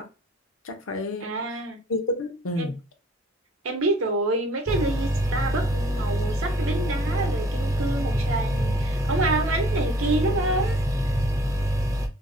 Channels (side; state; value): both; normal; correlation 0.56